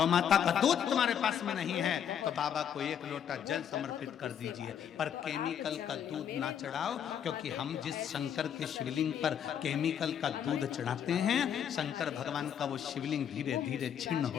दूध तुम्हारे पास में नहीं है तो बाबा को 1 लोटा जल समर्पित कर दीजिए। पर केमिकल का दूध ना चढ़ाओ, क्योंकि हम जिस शंकर के शिवलिंग पर केमिकल का दूध चढ़ाते हैं, शंकर भगवान का वो शिवलिंग धीरे धीरे छिन्न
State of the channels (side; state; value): right; quieter; 8.8 dB